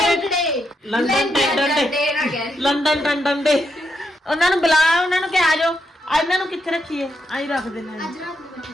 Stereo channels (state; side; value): normal; both; correlation 0.81